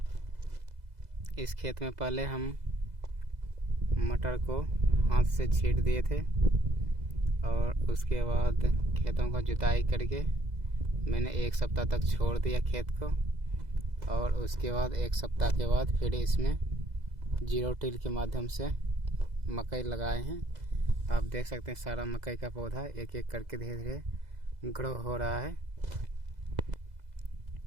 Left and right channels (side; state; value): left; late; 2.0 ms